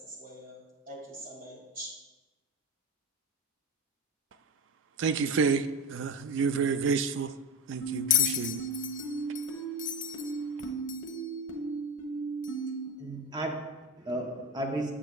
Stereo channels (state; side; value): normal; both; correlation 0.22